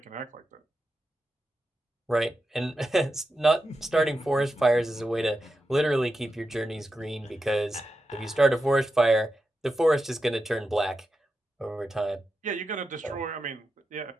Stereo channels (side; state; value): both; normal; correlation 0.89